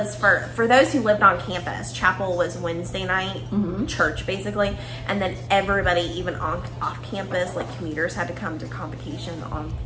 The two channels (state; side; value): identical; both; correlation 1.00